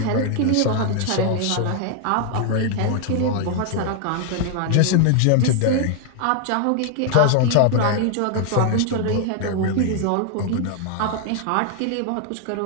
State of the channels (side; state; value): both; different; correlation 0.00